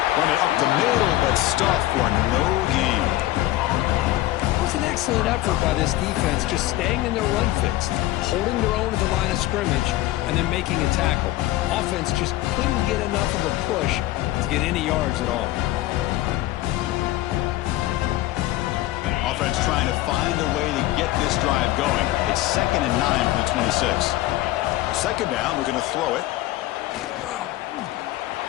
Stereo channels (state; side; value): quieter; right; 16.2 dB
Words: Run it up the middle, but stuffed for no gain. It was an excellent effort by this defense, just staying in their run fix, holding their own at the line of scrimmage, and then making a tackle. Offense just couldn't get enough of a push to get any yards at all. Offense trying to find a way to get this drive going. It's 2nd and 9 from the 26. 2nd down, we're going to throw it.